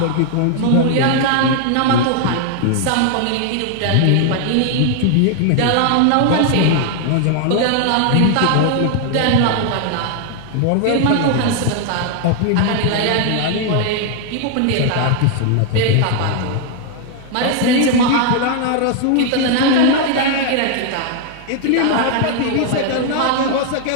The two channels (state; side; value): different; both; correlation 0.00